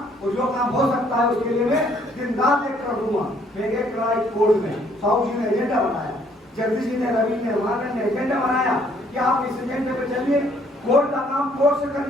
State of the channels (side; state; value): both; normal; correlation 0.64